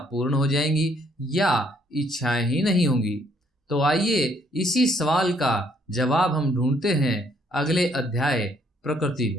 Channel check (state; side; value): normal; both; correlation 0.67